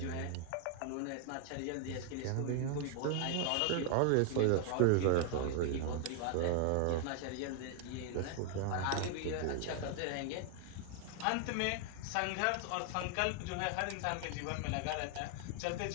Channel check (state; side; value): different; both; correlation 0.00